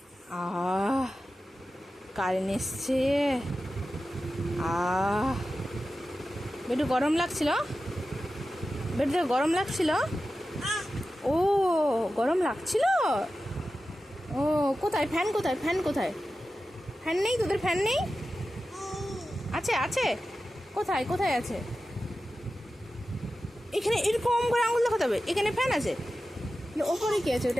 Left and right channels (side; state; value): both; normal; correlation 0.93